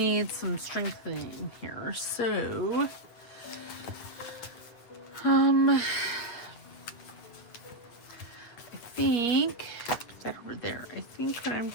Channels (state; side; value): late; right; 8.7 ms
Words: some strengthening here, so I think put that over there. I think what I'm